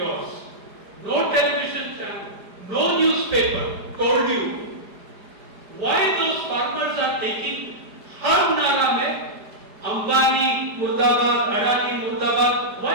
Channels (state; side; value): late; left; 5.0 ms